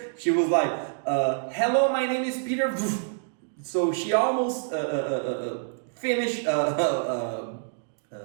she was like, hello, my name is Peter. So she almost finished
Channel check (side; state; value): left; silent; digital silence